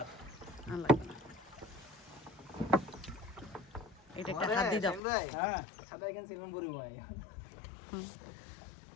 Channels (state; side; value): drops out; right; at 5.0 s